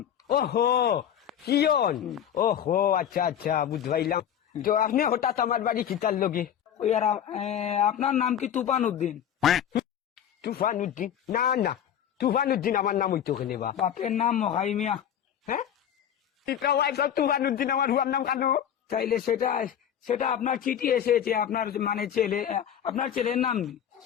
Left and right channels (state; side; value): quieter; right; 9.5 dB